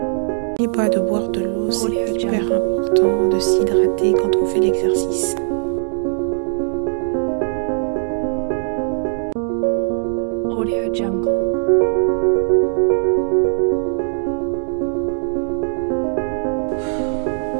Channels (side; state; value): left; silent; digital silence